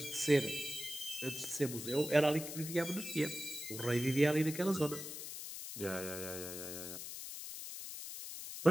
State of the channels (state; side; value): noise; left; hiss, 8 dB below the sound